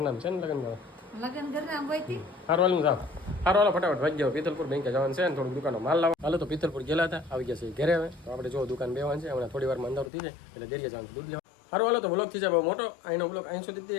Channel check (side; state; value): right; drops out; at 10.1 s